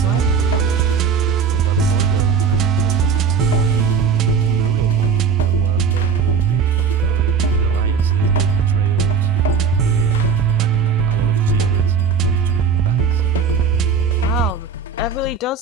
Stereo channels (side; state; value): left; quieter; 6.0 dB